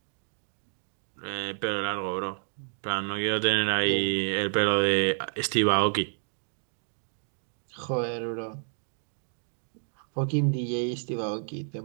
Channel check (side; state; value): left; silent; digital silence